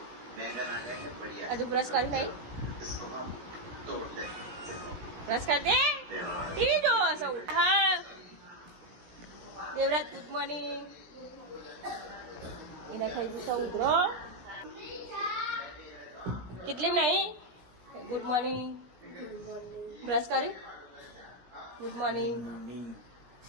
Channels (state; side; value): late; left; 17 ms